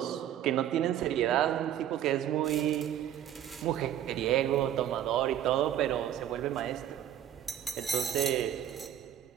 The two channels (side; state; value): left; quieter; 10.9 dB